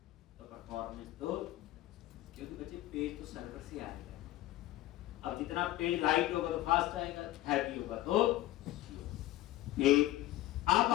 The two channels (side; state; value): right; quieter; 15.5 dB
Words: तो परफॉर्मेंस तो, क्योंकि बच्चे पेज तो सर्वर से आएगा, अब जितना पेज लाइट होगा तो फास्ट आएगा, हैवी होगा तो ठीक। अब